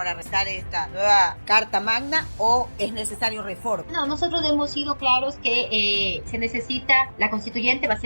restar esta nueva Carta Magna o es necesario reforma. No, nosotros hemos sido claros que se necesita, la constituyente va a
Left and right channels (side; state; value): both; inverted; correlation -1.00